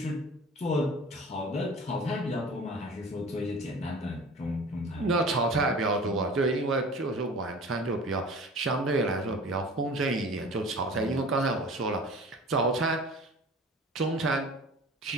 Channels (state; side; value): normal; both; correlation 0.41